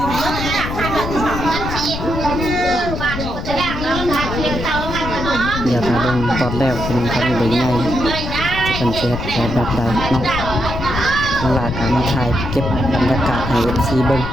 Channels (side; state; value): left; noise; rumble, 5 dB below the sound